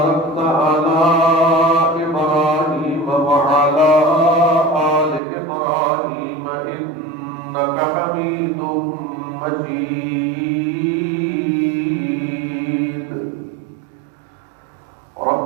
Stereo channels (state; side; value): drops out; left; at 5.2 s